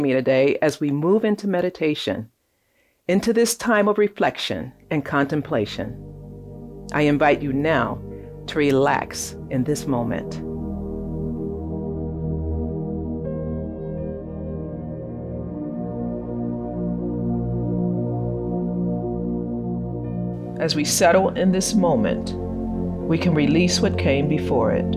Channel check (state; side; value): identical; both; correlation 1.00